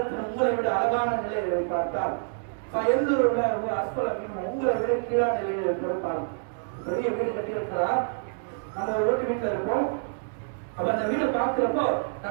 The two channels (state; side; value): silent; left; 60 dB below the other